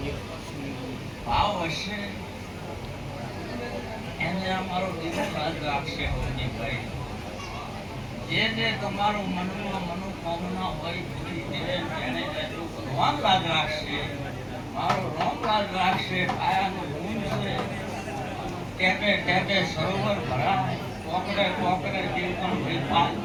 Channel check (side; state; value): both; identical; correlation 1.00